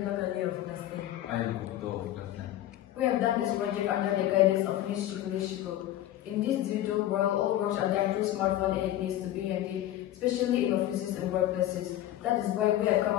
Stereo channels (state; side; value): quieter; right; 13.3 dB